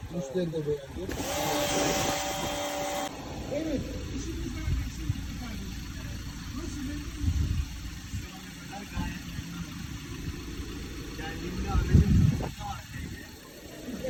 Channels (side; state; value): both; identical; correlation 1.00